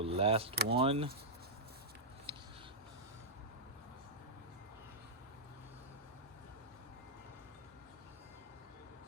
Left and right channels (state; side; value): normal; both; correlation -0.11